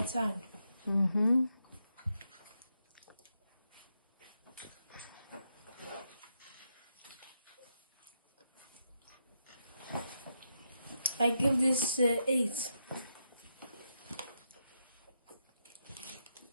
Mm-hmm. I give this 8.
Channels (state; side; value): inverted; both; correlation -0.83